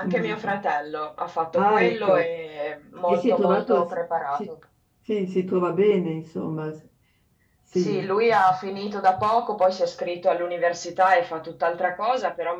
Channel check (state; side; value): identical; both; correlation 1.00